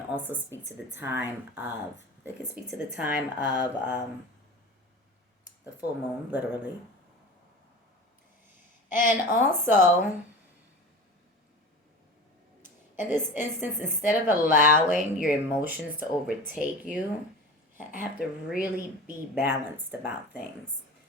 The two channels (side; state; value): both; normal; correlation 0.33